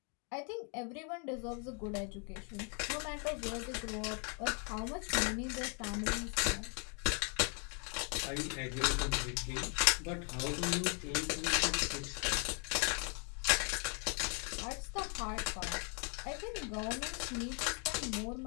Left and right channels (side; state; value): right; quieter; 38.6 dB